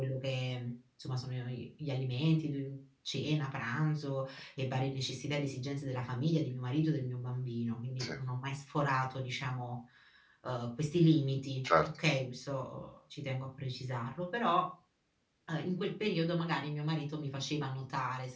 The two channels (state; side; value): identical; both; correlation 1.00